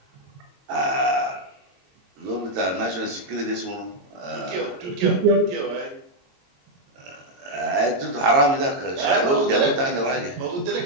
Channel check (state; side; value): late; left; 22 ms